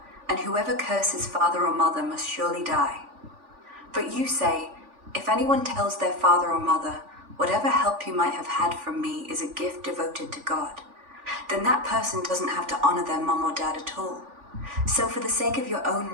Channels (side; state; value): left; late; 3.5 ms